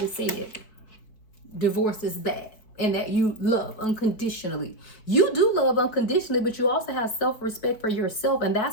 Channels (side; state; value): right; late; 4.6 ms